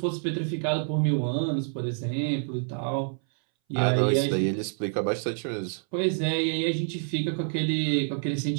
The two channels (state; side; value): silent; left; 60 dB below the other